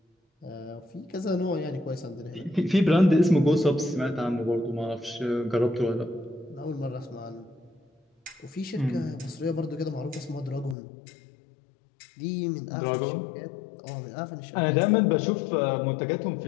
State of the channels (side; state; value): right; drops out; at 10.8 s